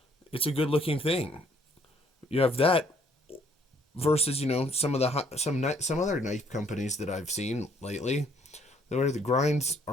a good looking thing. You have that versus some of the some other knife companies that I've seen lately, where the grinds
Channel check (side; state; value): both; normal; correlation 0.64